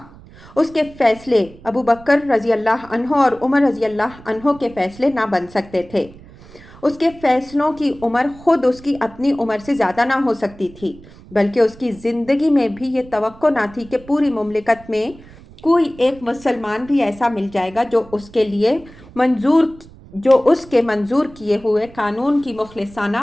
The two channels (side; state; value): right; noise; rumble, 21 dB below the sound